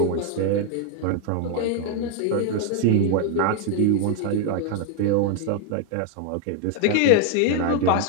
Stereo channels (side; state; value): both; different; correlation 0.00